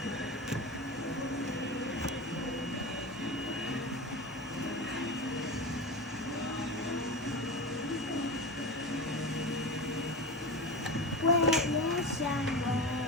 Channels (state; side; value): normal; both; correlation 0.24